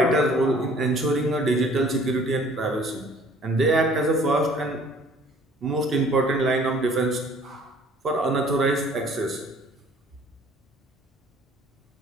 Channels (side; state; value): both; normal; correlation 0.54